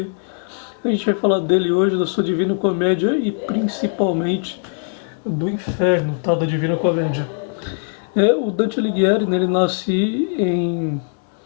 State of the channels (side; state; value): right; silent; 66 dB below the other